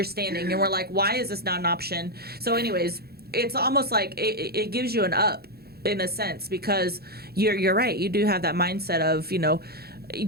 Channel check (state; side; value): late; left; 0.46 ms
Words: and we're like, why is this not an option? So anyways, it's almost like it gives you an up in a sense, because you're right. You do have that mindset of,